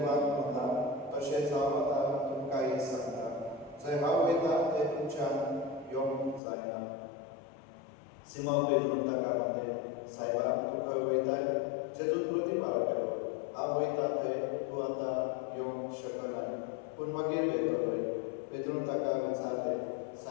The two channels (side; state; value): right; drops out; at 6.4 s